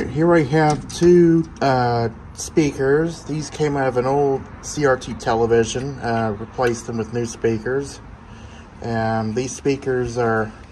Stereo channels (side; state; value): both; identical; correlation 1.00